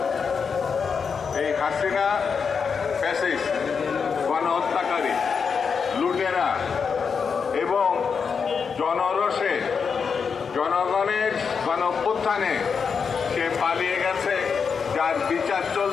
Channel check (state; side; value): quieter; right; 5.9 dB